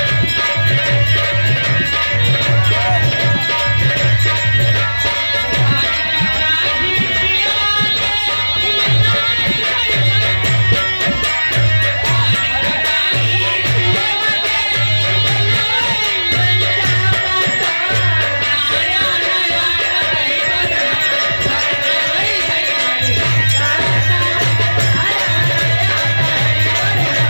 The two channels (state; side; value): inverted; both; correlation -1.00